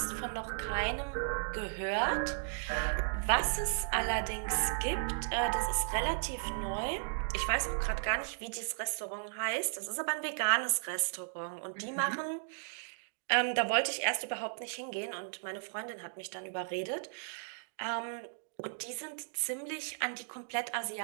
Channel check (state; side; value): silent; left; digital silence